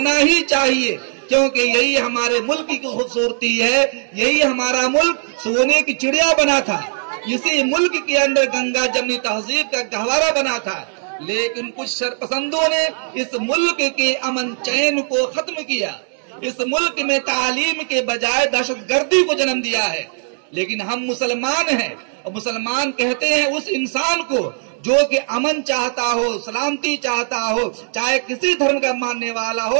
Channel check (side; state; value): left; silent; digital silence